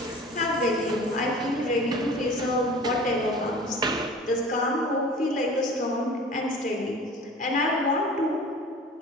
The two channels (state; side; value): normal; both; correlation 0.41